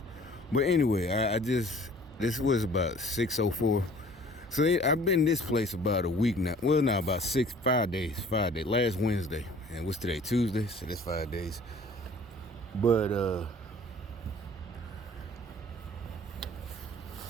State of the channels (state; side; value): normal; both; correlation 0.51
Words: But anyway, I just this was about 6:04. So I've been this place about a week now. Well, now about 5 days. 5 days. Last Wednesday, and what's today? Tuesday. So that's 5 days. But